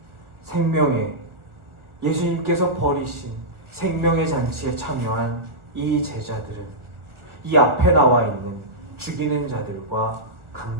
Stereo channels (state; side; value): late; left; 1.4 ms